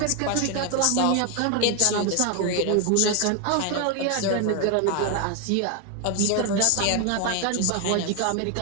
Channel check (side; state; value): both; different; correlation 0.01